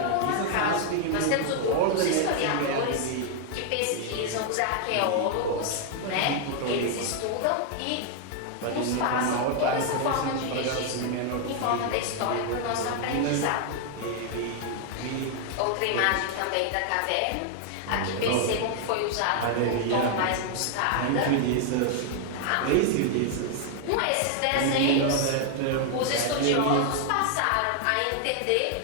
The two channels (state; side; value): different; both; correlation 0.00